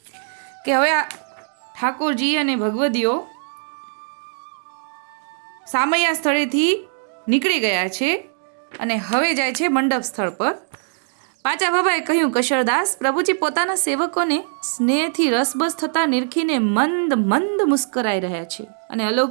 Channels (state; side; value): silent; left; digital silence